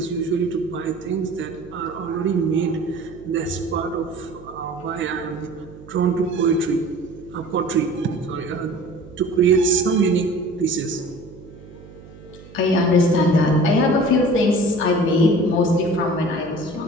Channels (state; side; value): noise; right; hum, 20 dB below the sound